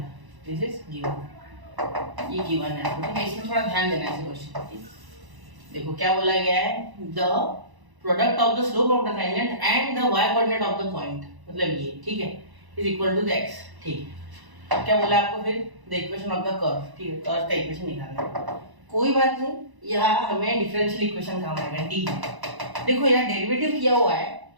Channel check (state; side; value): late; left; 1.0 ms